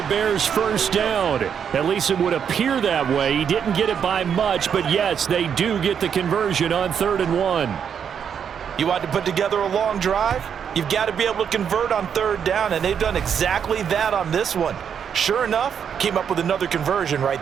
Bears first down. At least it would appear that way. He didn't get it by much, but yes, they do get the conversion on 3rd and 1. You want to put together a long drive? You've got to be able to convert on 3rd down, and they've done exactly that on this one. Sure enough, came up with another conversion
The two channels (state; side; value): quieter; left; 7.7 dB